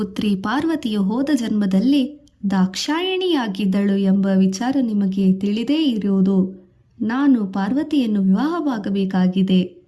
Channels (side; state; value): both; identical; correlation 1.00